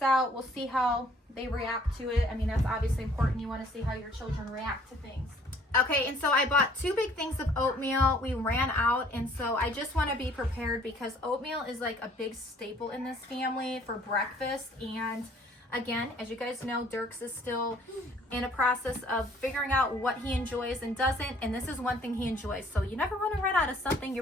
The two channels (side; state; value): both; normal; correlation 0.58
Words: We'll see how they react to it. I mean, that's obviously important. You want to see how your children react to things. Okay, and so I bought 2 big things of oatmeal. We ran out, and so I just want to be prepared, because oatmeal is like a big staple in this family for breakfast. And again, as you guys know, Dirks is still in a process of figuring out what he enjoys and doesn't, and this is one thing he enjoys. So you never want to run out of something your